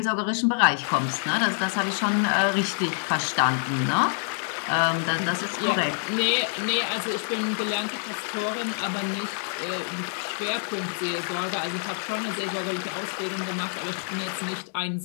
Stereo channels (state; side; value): silent; right; digital silence